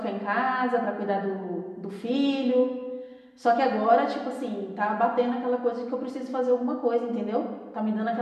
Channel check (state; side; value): identical; both; correlation 1.00